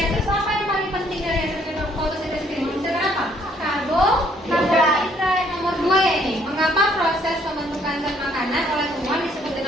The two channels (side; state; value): both; normal; correlation 0.65